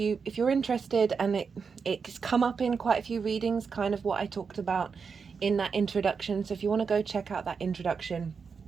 interested, and it's come up in quite a few readings, kind of what I talked about in that introduction. So if you want to go check out that introduction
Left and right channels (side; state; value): left; quieter; 5.6 dB